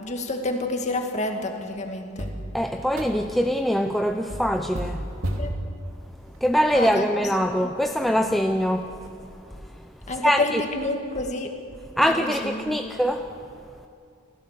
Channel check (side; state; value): both; normal; correlation 0.75